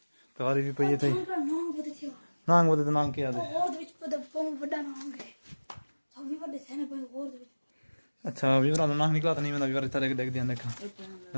तवारी भी पई थई नांग बदे नांग के याद है और विच पद पम बड़ा नांग है सब विवाह दे सेने पर और अच्छा विवाह नांग निकला तो नहीं मैं विवाह तरह देख दिया देखा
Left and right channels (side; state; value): both; inverted; correlation -1.00